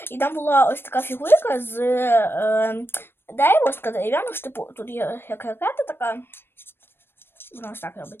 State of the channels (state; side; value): late; right; 0.10 ms